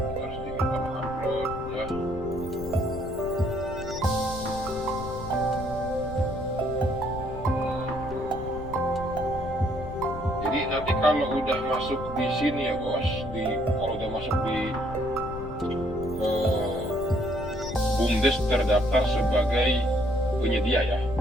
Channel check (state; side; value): noise; left; rumble, 11 dB below the sound